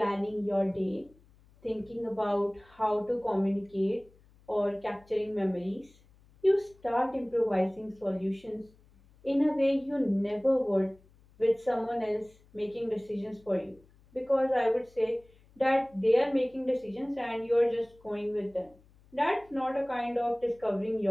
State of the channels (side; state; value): left; noise; hum, 28 dB below the sound